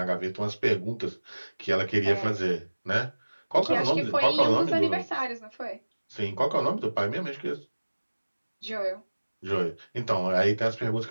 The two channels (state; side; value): inverted; both; correlation -1.00